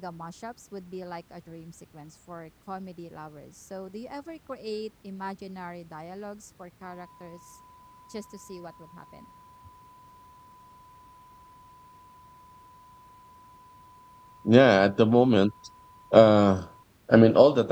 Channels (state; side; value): identical; both; correlation 1.00